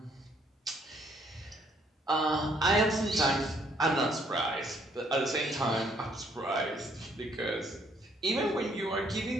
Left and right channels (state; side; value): normal; both; correlation 0.66